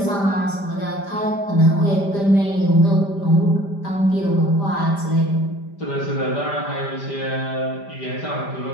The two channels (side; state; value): right; late; 5.0 ms